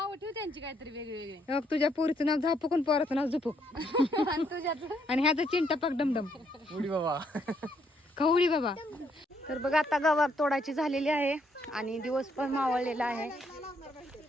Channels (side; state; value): both; normal; correlation 0.72